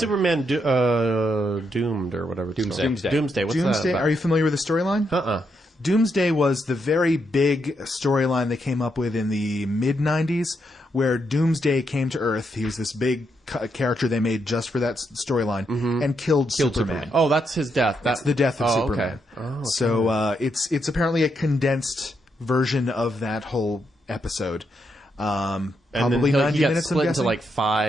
Doomed or whatever? It's Doomsday. called? Doomsday. What's Doomsday, that are you familiar with the storyline? Doomsday was the very big storyline they came up with in the mid-90s, where Doomsday came to Earth. He was this big character they made just for that storyline, and killed Superman. Oh, that's his death. That's the death of Oh, Superman. okay. Oh, So it's apparently a condensed version of that whole episode. And Probably then 90 he got minutes, I'm split into guessing? like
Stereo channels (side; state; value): both; normal; correlation 0.80